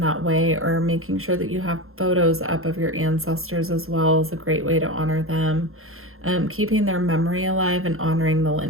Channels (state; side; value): late; left; 0.62 ms